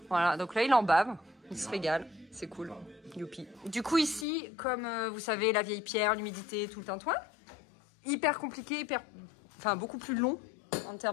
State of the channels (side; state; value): right; drops out; at 4.2 s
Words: Voilà, donc là, il en bave. Il se régale. C'est cool. Youpi. Du coup, ici, comme vous savez, la vieille pierre, l'humidité, tout le tintouin, hyper compliqué, enfin, beaucoup plus long en